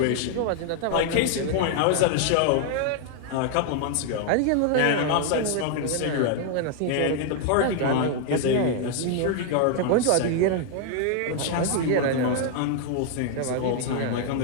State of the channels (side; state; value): both; different; correlation 0.00